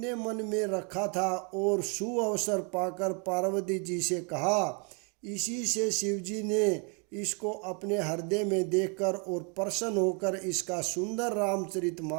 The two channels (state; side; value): quieter; left; 35.9 dB